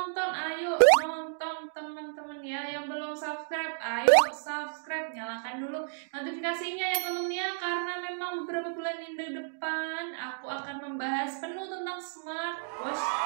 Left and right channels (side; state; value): left; silent; digital silence